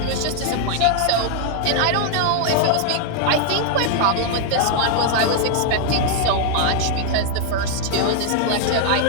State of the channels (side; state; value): both; different; correlation 0.00